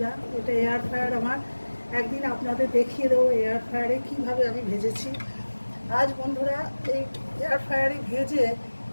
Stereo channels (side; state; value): both; inverted; correlation -1.00